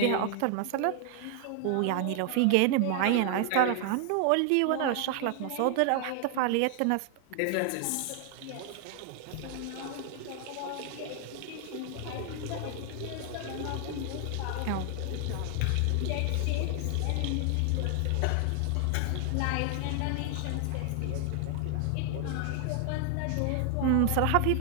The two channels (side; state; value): both; different; correlation 0.00